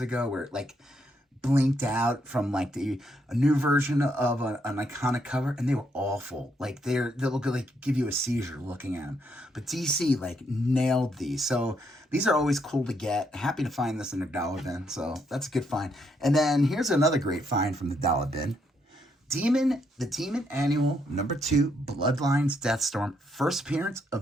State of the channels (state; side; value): normal; both; correlation 0.75